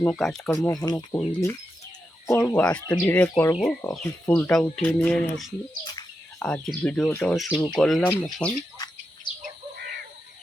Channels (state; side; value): normal; both; correlation 0.87